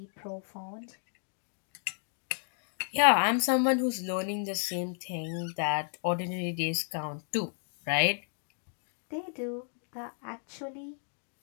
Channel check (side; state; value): right; silent; 56 dB below the other